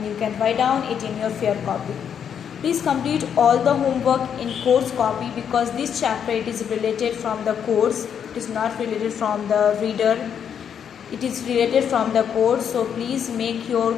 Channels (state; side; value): quieter; right; 8.1 dB